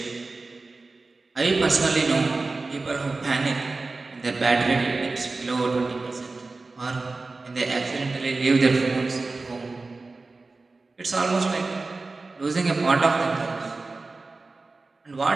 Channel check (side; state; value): left; quieter; 3.6 dB